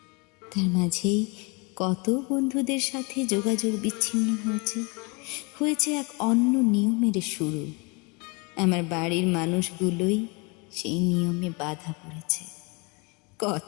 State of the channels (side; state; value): right; quieter; 29.9 dB